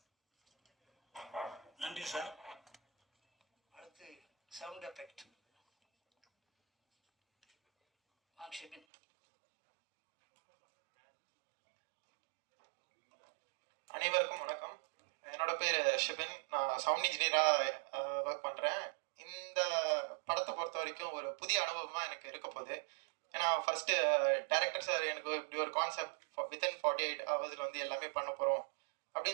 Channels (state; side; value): drops out; left; at 8.8 s